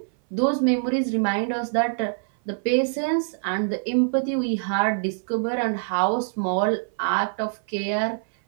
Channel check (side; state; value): left; silent; 58 dB below the other